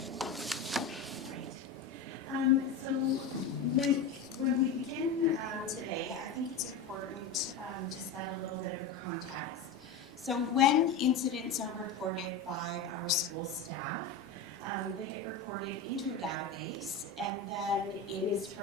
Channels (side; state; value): right; quieter; 4.9 dB